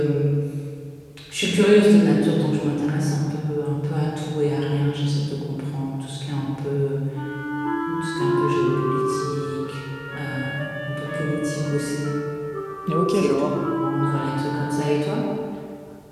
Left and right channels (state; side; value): identical; both; correlation 1.00